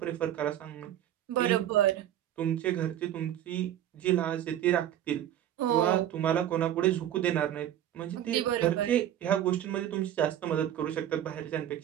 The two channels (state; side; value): quieter; left; 11.4 dB